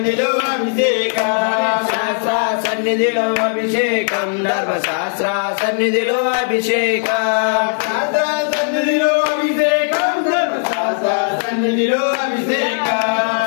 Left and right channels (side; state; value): right; silent; digital silence